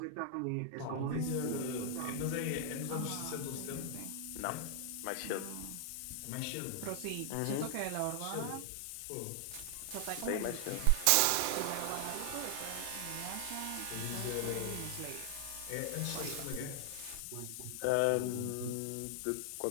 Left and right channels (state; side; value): different; both; correlation 0.00